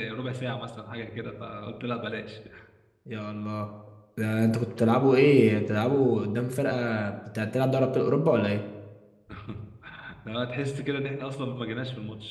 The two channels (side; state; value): both; identical; correlation 1.00